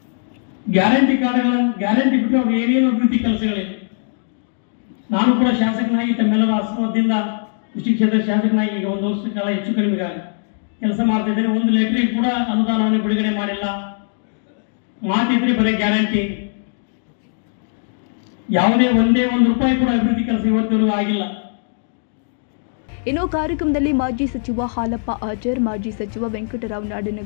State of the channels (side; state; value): right; silent; 66 dB below the other